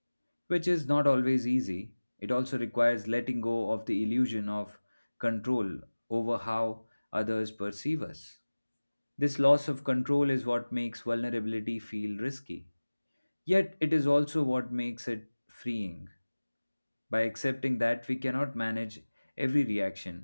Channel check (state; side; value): inverted; both; correlation -1.00